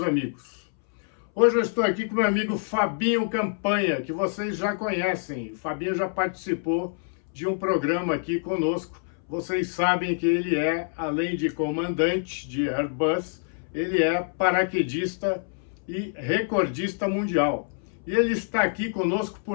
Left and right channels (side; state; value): right; silent; 61 dB below the other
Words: amigos. Hoje eu estou aqui com meu amigo Fabinho Campanha, que vocês já conhecem. O Fabinho já participou de um programa aqui conosco. Vocês sabem que ele é, além de comandante de Airbus, ele é paraquedista e recordista mundial. E ele está aqui conosco